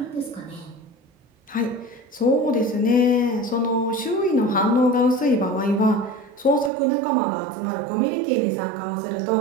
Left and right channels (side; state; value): left; drops out; at 6.7 s